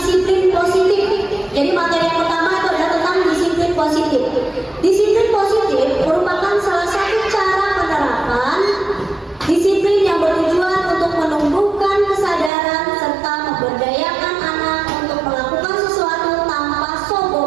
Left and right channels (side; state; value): left; drops out; at 12.5 s